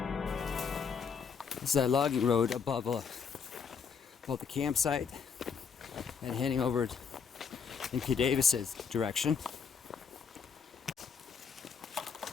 This is that logging road above the campsite and heading over in P. Davis's direction.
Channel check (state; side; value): quieter; right; 6.3 dB